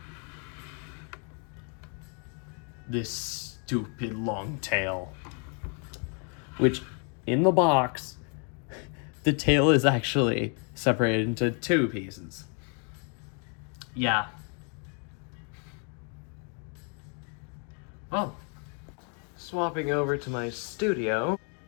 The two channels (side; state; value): right; quieter; 38.7 dB